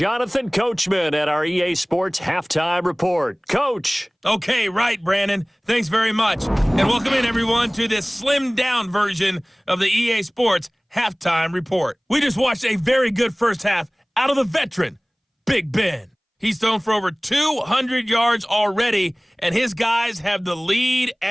Coachman at our EA Sports Halftime Report. Coach! Okay, right, Brandon. Thanks very much. And welcome in, everyone, to this slimmed-down version of the EA Sports Halftime Report. We just watched a very good first half out of the veteran, Big Ben. He's thrown for over 200 yards already, and his guys have the lead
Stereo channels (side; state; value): both; identical; correlation 1.00